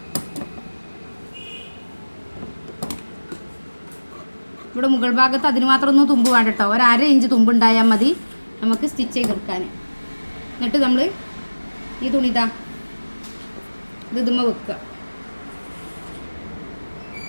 ഇവിടെ മുകൾ ഭാഗത്ത് അതിന് മാത്രം ഒന്നും തുമ്പ് വേണ്ട കേട്ടോ. ഒരു 1/2 ഇഞ്ച് തുമ്പ് ഉണ്ടായാൽ മതി നമുക്ക് സ്റ്റിച്ച് ചെയ്തെടുക്കാൻ. എന്നിട്ട് നമ്മൾ ഈ തുണി ഇതുമ്മ വെക്കുക.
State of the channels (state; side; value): inverted; both; correlation -1.00